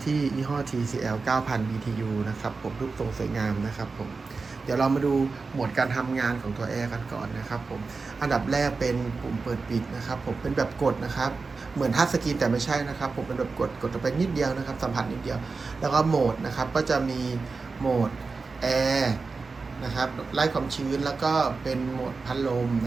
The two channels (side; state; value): left; quieter; 4.3 dB